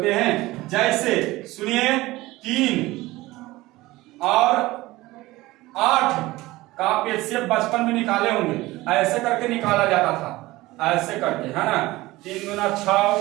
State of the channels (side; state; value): left; quieter; 19.0 dB